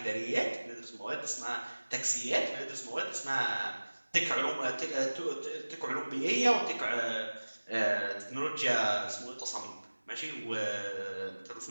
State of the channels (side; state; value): both; inverted; correlation -1.00